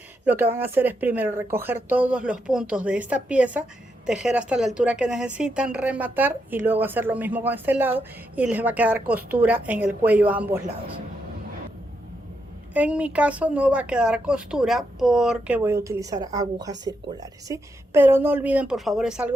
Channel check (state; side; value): normal; both; correlation 0.82